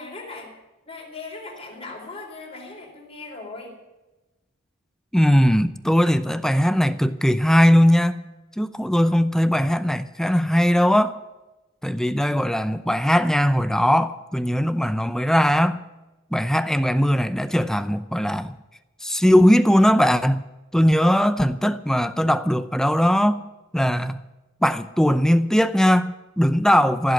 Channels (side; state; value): both; normal; correlation 0.97